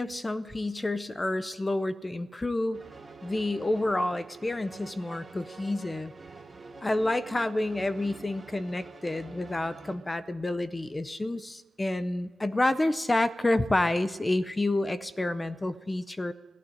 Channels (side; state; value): both; normal; correlation 0.97